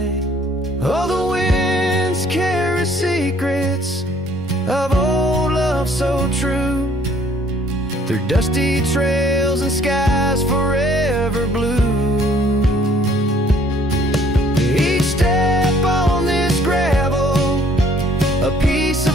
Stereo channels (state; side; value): normal; both; correlation 0.60